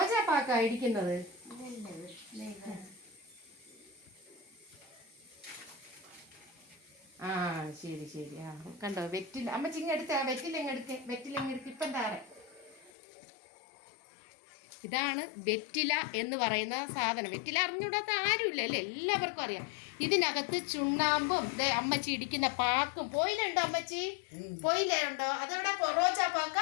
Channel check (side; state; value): right; drops out; at 12.9 s